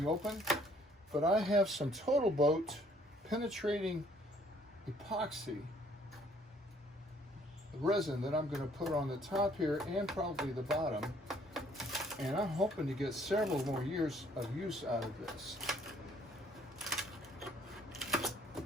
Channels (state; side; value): normal; both; correlation 0.62